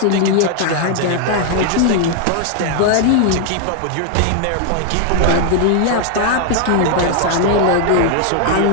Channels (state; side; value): different; both; correlation 0.00